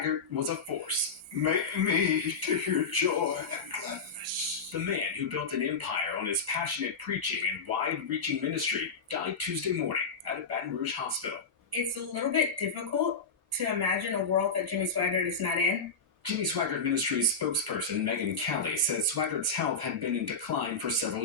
was a force. Make me to hear joy and gladness. The man who built an empire on his passionate preaching and wide-reaching ministry died Tuesday morning at a Baton Rouge hospital. It's a little bit difficult to imagine a world that Jimmy Swaggart is not in. Jimmy Swaggart Ministries spokesperson Megan Kelly says Swaggart's health had been in decline for several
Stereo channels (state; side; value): quieter; right; 4.5 dB